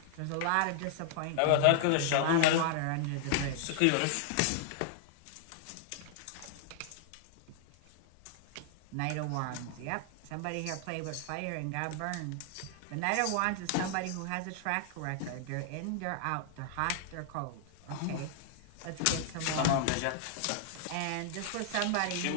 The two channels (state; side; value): different; both; correlation -0.01